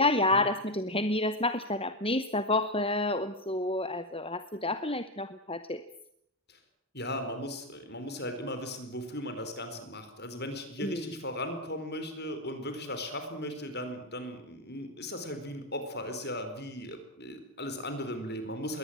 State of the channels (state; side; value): normal; both; correlation 0.10